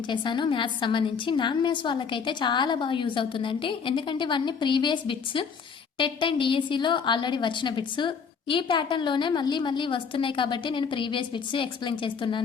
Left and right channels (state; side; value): quieter; right; 6.1 dB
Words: చేశాను మ్యాథ్స్ సంబంధించి. నాన్ మ్యాథ్స్ వాళ్ళకైతే చాలా బాగా యూజ్ అవుతుందండి. ఎందుకంటే ఇవన్నీ ప్రీవియస్ బిట్స్, టెట్ అండ్ డిఎస్సిలో ఆల్రెడీ వచ్చిన బిట్స్ ఈ ప్యాటర్న్లోనే మళ్ళీ వస్తున్నాయి కాబట్టి నేను ప్రీవియస్ బిట్స్ ఎక్స్ప్లెయిన్